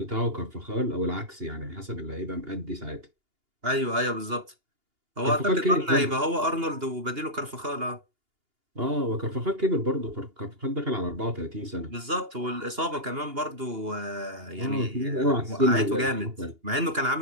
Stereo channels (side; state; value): left; late; 2.8 ms